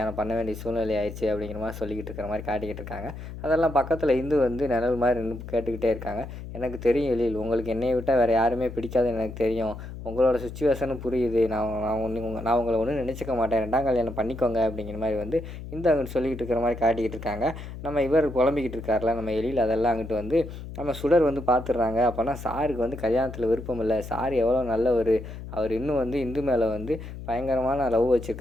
பண்ண வேண்டிய சூழ்நிலை ஆயிடுச்சு." அப்படிங்கிற மாரி சொல்லிக்கிட்டு இருக்கிற மாரி காட்டிக்கிட்டு இருக்காங்க. அதெல்லாம் பக்கத்துல இந்து வந்து நிழல் மாரி நின்னு கேட்டுக்கிட்டே இருக்காங்க. "எனக்கு தெரியும் எழில், உங்களுக்கு என்னைய விட்டா வேற யாருமே பிடிக்காதுன்னு எனக்கு தெரியும். உங்களோட சிச்சுவேஷனும் புரியுது. நான் உங்கள ஒண்ணும் நினைச்சுக்க மாட்டேன். 2ஆம் கல்யாணம் பண்ணிக்கோங்க." அப்படிங்கிற மாரி வந்து இந்து அங்கிட்டு சொல்லிக்கிட்டு இருக்கிற மாரி காட்டிக்கிட்டு இருக்காங்க. நம்ம இவர் புலம்பிக்கிட்டு இருக்கார்ல நம்ம எழில், அதெல்லாம் அங்கிட்டு வந்து நம்ம சுடர் வந்து பார்த்துடுறாங்க. அப்போனா சாருக்கு வந்து கல்யாணத்தில் விருப்பம் இல்லை. சார் எவ்வளோ நல்லவர். அவர் இன்னும் வந்து இந்து மேலே வந்து பயங்கரமான லவ்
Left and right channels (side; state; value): left; noise; hum, 11 dB below the sound